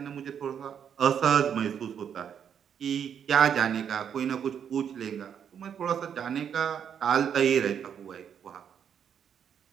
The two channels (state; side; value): quieter; left; 8.2 dB